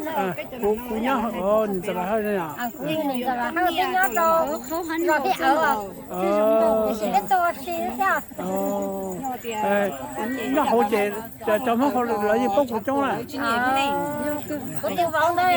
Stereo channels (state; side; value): identical; both; correlation 1.00